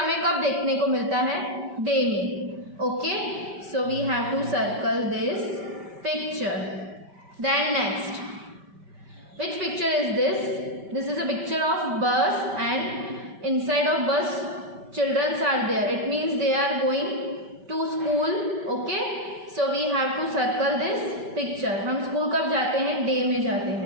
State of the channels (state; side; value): late; left; 5.1 ms